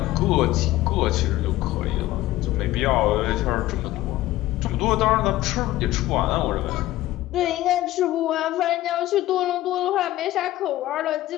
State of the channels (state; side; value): quieter; right; 15.8 dB